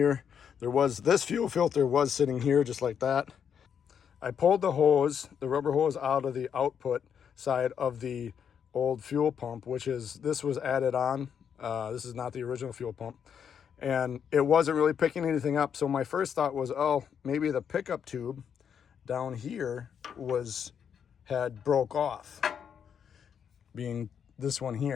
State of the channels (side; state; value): right; quieter; 7.8 dB